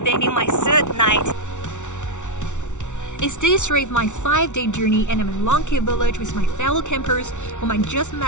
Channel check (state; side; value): late; right; 0.85 ms